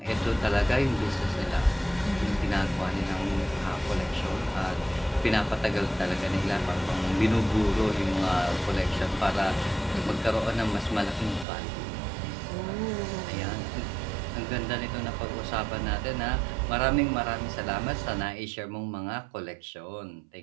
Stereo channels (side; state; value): left; drops out; at 11.5 s